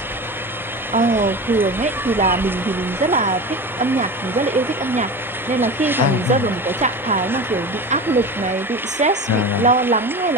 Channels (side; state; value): both; normal; correlation 0.29